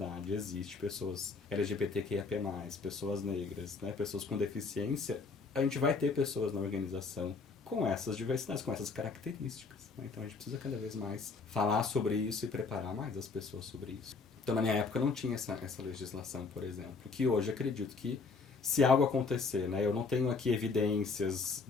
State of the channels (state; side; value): quieter; right; 4.4 dB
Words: existe pessoas LGBTQIAP+, pessoas negras, né, pessoas com deficiência, a gente vai ter pessoas na organização com essas diversidades, com essas características, né? Então a gente precisa cada vez mais falar sobre isso e preparar mais as pessoas sobre isso. Então na minha época não tinha essa legislação, por exemplo, que hoje acredito que se algo acontecer, né, eu não tenho aqui evidências,